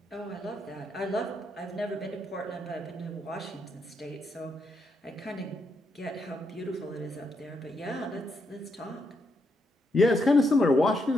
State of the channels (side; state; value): both; normal; correlation 0.79